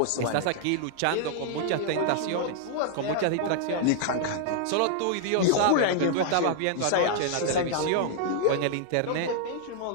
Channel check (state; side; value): different; both; correlation 0.00